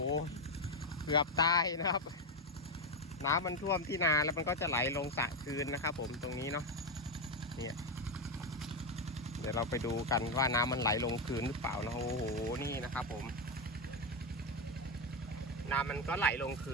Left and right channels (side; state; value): both; normal; correlation 0.08